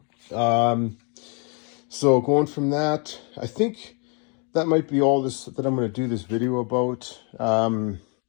So going from that, I think that might be all this that I'm going to do this video about.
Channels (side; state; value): right; quieter; 36.2 dB